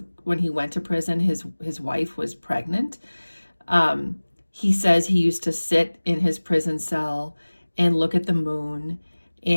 when he went to prison, his wife was pregnant. He says he used to sit in his prison cell and look at the moon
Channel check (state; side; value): inverted; both; correlation -1.00